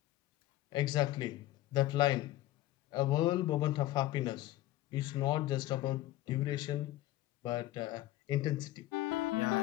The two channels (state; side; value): quieter; right; 15.5 dB